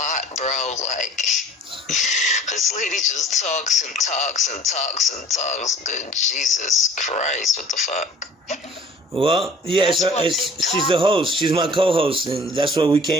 bro. Like, this lady just talks and talks and talks and talks. Good Jesus Christ, what the fuck? Well, yeah, she's the host. She's my co-host, and that's what we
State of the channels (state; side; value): normal; both; correlation 0.49